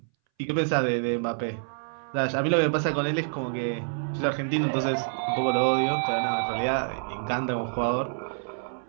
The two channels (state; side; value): silent; left; 60 dB below the other